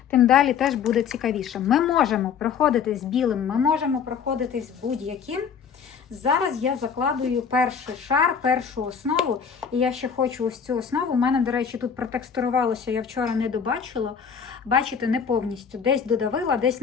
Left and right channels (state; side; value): quieter; right; 6.9 dB